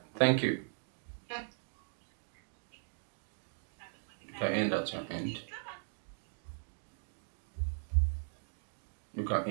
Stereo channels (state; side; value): silent; left; digital silence